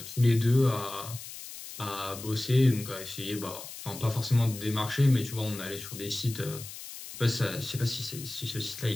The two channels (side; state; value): left; noise; hiss, 12 dB below the sound